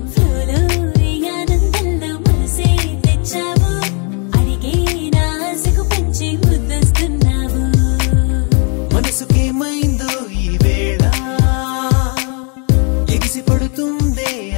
ఫ్లోలో ఈ ఆనందంలో మనసే తెచ్చావు అడిగే నా ఆశకు పంచి ముద్దొస్తున్నావు మనసుకేమైందో ఈ వేళ ఎగిసి పడుతుందే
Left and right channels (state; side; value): quieter; right; 36.9 dB